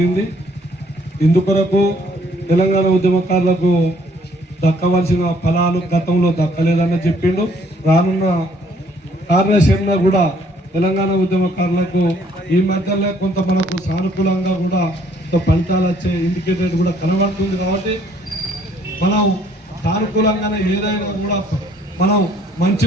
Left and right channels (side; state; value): both; normal; correlation 0.63